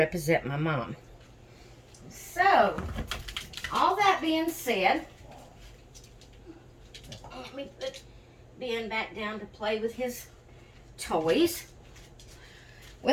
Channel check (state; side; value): identical; both; correlation 1.00